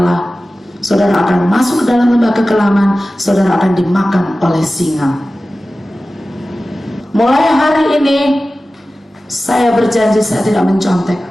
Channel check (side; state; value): both; normal; correlation 0.96